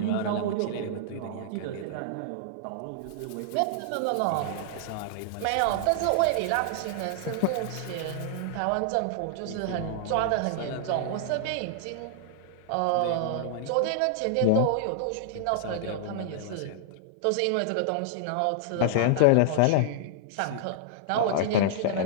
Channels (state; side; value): different; both; correlation -0.01